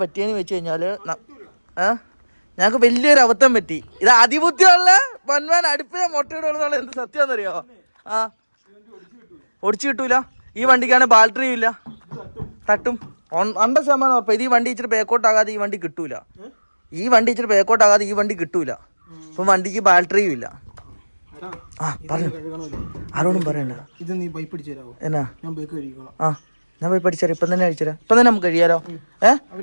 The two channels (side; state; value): both; inverted; correlation -1.00